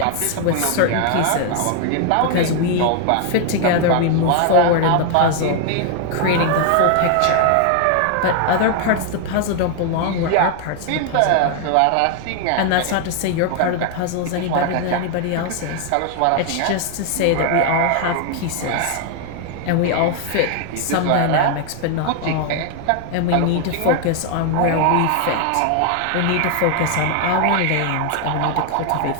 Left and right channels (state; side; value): different; both; correlation 0.00